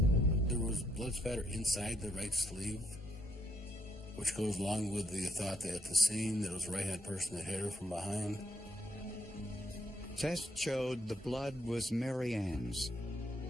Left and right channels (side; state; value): both; normal; correlation 0.75